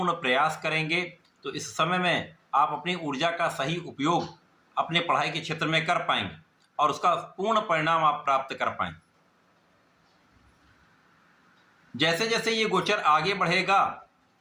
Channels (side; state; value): both; identical; correlation 1.00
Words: प्रयास करेंगे तो इस समय में आप अपनी ऊर्जा का सही उपयोग अपने पढ़ाई के क्षेत्र में कर पाएंगे और उसका पूर्ण परिणाम आप प्राप्त कर पाएंगे। जैसे जैसे ये गोचर आगे बढ़ेगा,